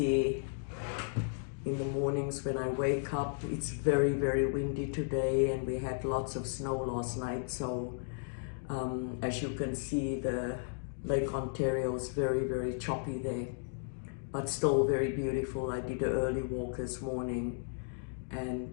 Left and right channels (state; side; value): silent; right; digital silence